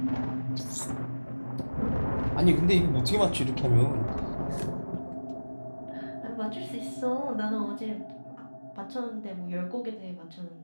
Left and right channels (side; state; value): both; inverted; correlation -1.00